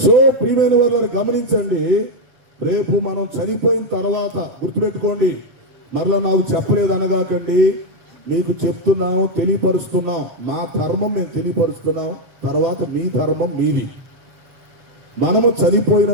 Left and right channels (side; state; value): left; late; 7.9 ms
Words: సో ప్రియమైన వారిని గమనించండి. రేపు మనం చనిపోయిన తర్వాత గుర్తుపెట్టుకోండి, మరలా నాకు చెప్పలేదు అనగాకండి. మీకు చెప్తున్నాం, తెలియపరుస్తున్నాం. మా ధర్మం నేను తెలియపరుస్తున్నాం, తర్వాత మీ ధర్మం మీది. మనము చనిపోయిన